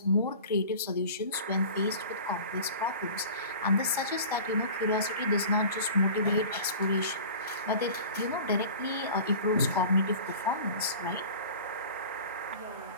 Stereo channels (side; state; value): both; inverted; correlation -0.40